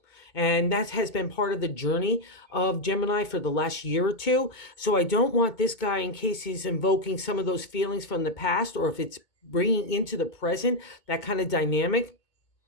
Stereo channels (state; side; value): late; right; 2.2 ms